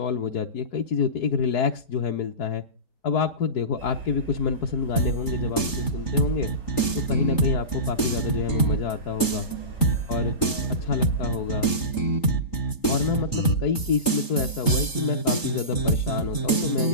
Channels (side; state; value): right; late; 3.8 ms